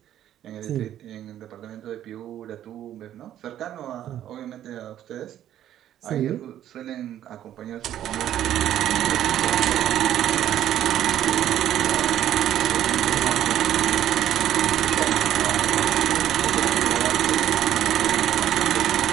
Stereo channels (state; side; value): quieter; left; 11.5 dB